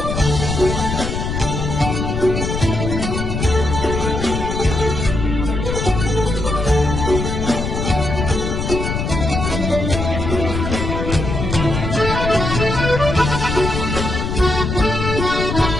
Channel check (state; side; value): noise; left; rumble, 3 dB below the sound